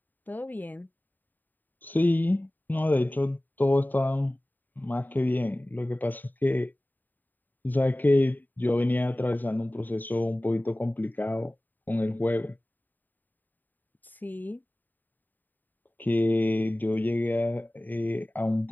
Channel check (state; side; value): late; right; 0.088 ms